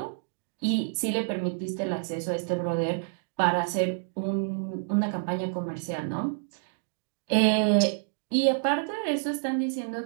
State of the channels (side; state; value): left; silent; digital silence